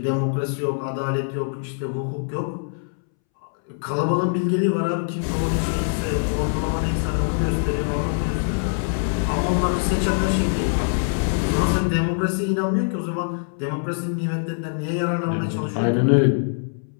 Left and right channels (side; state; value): right; silent; 63 dB below the other